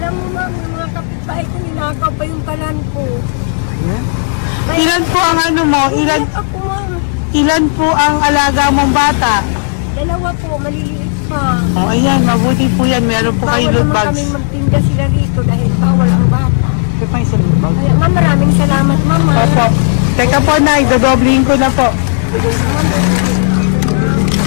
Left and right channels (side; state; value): right; silent; 67 dB below the other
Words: mo ma'am, yung mga kapitbahay ko, ninakaw pa yung kalan ko. Ilan po ang ano mo? Umiyak ako ma'am. Ilan po ang alaga mong bata? Dalawa po, maliliit pa. O, ayan, mabuti po yan. Meron po kayo Bawal loot naman bags. kami magtinda sila rito dahil bawal ang bata. Ito pa yung sa loot bag. Kaya ma'am, maraming salamat mama. Opo. Teka po, Nay, dodoblihin ko na po.